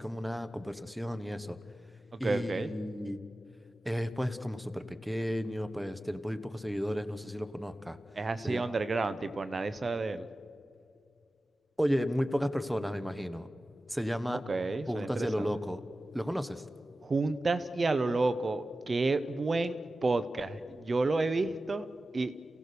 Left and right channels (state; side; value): normal; both; correlation 0.95